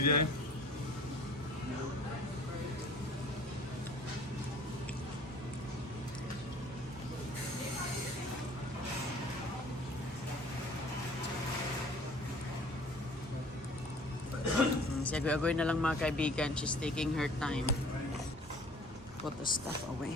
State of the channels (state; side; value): normal; both; correlation 0.50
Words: Si Agoy-Agoy na lang mga kaibigan. She's taking her time. Put the stuff away.